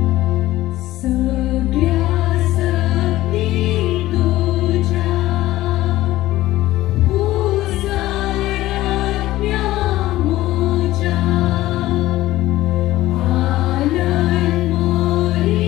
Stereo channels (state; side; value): quieter; right; 16.0 dB